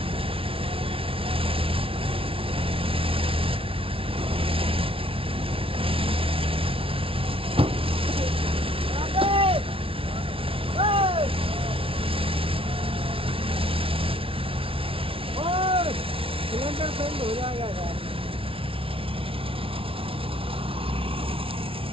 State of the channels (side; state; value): left; late; 0.26 ms